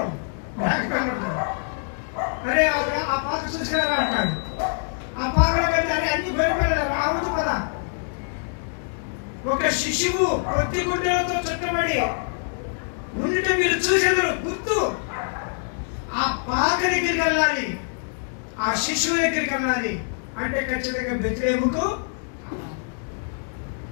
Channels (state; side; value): silent; right; digital silence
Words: మేక పిల్లలు ఉంటారు. అరే ఆ పాక చూసినారా అంటాడు. ఆ పాకలో వెళ్తే అరే అన్ని గొర్రె పిల్లలు రావద్దు కదా. ఒక శిశువు కొద్ది గుడ్డలతో చుట్టబడి ఉండిట మీరు చూసేదరు గుర్తు. ఆ పాక దగ్గరికి వెళ్ళాలి, ఆ శిశువు దగ్గరికి వెళ్ళాలి అంటే ఖచ్చితంగా బెత్లెహేముకు.